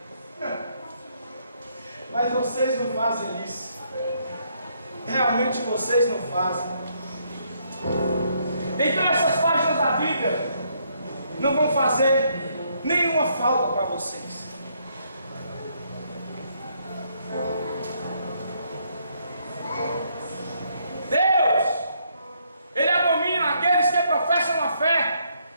Mas vocês não fazem isso. Realmente vocês não fazem. Então essas páginas da Bíblia não vão fazer nenhuma falta para vocês. Deus, Ele abomina aqueles que professam a fé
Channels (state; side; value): inverted; both; correlation -0.72